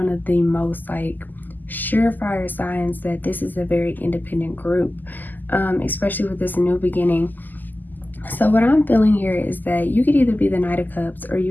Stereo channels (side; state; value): right; late; 0.086 ms